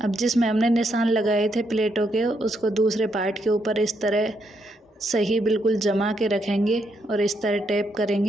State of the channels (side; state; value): both; normal; correlation 0.77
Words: जिसमें हमने निशान लगाए थे प्लेटों के, उसको दूसरे पार्ट के ऊपर इस तरह सही बिल्कुल जमा के रखेंगे और इस तरह टैप